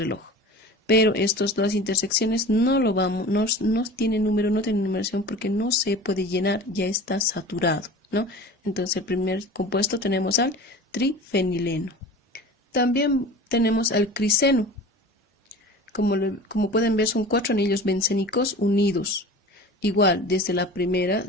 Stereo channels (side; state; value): both; normal; correlation 0.37